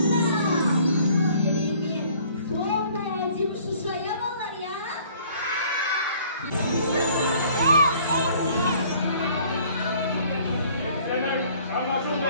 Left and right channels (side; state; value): both; inverted; correlation -0.56